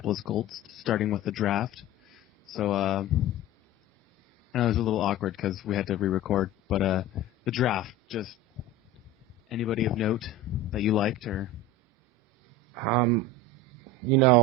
Colts, starting with the draft. So I know it was a little awkward because we had to re-record, but the draft, just anybody of note that you liked or?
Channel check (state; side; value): normal; both; correlation 0.32